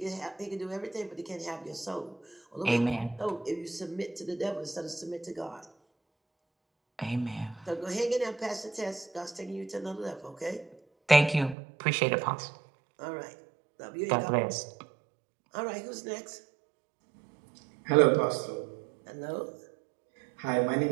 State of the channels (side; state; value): left; drops out; at 11.6 s